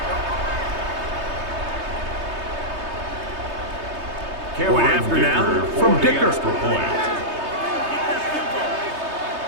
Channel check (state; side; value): late; left; 3.2 ms